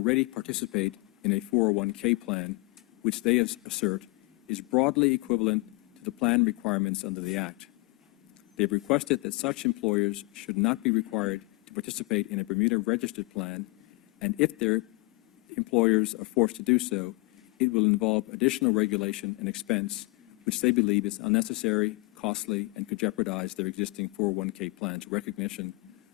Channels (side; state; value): right; quieter; 25.7 dB